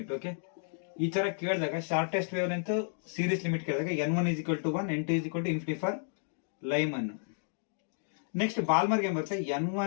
ಓಕೆ, ಈ ತರ ಕೇಳಿದಾಗ shortest wave length series limit ಕೇಳಿದಾಗ n1 is equal to 1, n2 is equal to infinity for Lyman. Next ಬಾಲ್ಮರ್ಗೆ ಏನ್ ಬರುತ್ತೆ,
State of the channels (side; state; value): right; silent; digital silence